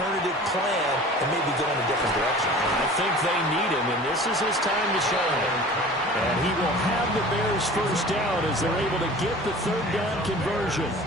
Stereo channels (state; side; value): normal; both; correlation 0.42